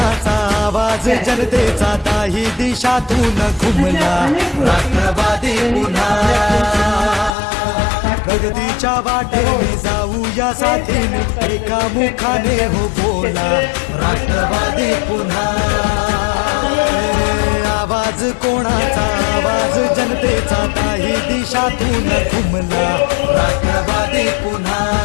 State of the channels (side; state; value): right; drops out; at 7.4 s